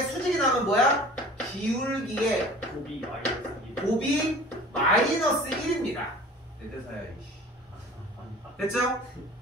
수직이 나면 뭐야? 기울기의 곱이 마이너스 1입니다. 내 대사야, 이씨. 됐죠?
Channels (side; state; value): both; normal; correlation 0.44